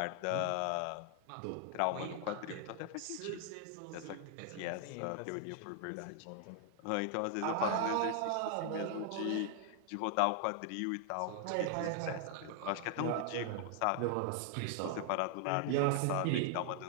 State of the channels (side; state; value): both; different; correlation 0.00